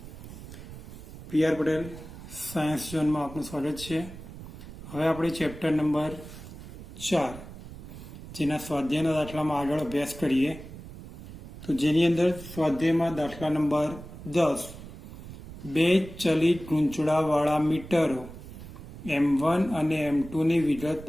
PR Patel science ઝોનમાં આપનું સ્વાગત છે. હવે આપણે ચેપ્ટર નંબર 4 જેના સ્વાધ્યાયના દાખલામાં આગળ અભ્યાસ કરીએ. તો જેની અંદર સ્વાધ્યાયમાં દાખલા નંબર 10 બે ચલિત ગૂંચળાવાળા મીટરો M1 અને M2 ની વિગત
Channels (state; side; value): noise; right; rumble, 14 dB below the sound